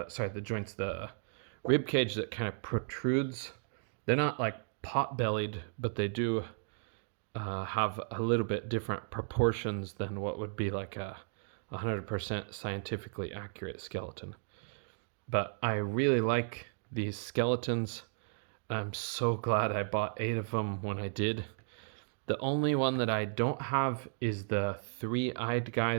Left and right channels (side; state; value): left; silent; digital silence